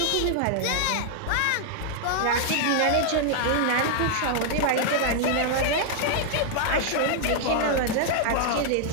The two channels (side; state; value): both; different; correlation 0.00